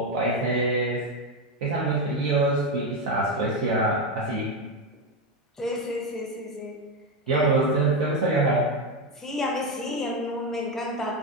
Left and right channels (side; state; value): both; normal; correlation 0.10